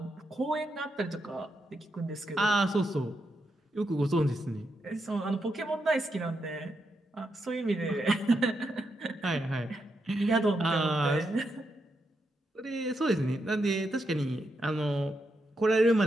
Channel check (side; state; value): both; normal; correlation 0.83